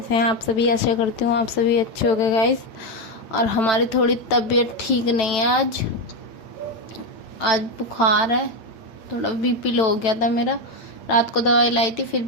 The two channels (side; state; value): right; late; 9.0 ms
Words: हैं आप सभी? आशा करती हूँ आप सभी अच्छे हो गए गाइस। और हमारी थोड़ी तबीयत ठीक नहीं है आज बुखार है, थोड़ा बीपी लो हो गया था मेरा। रात को दवाई लाई थी फिर